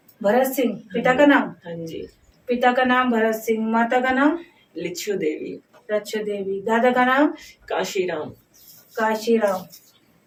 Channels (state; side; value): identical; both; correlation 1.00